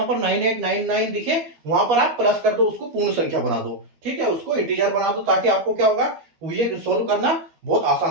पर 9899 दिखे वहां पर आप प्लस कर दो, उसको पूर्ण संख्या बना दो। ठीक है, उसको इंटीजर बना दो, ताकि आपको क्या होगा, ये सोल्व करना बहुत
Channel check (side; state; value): left; late; 12 ms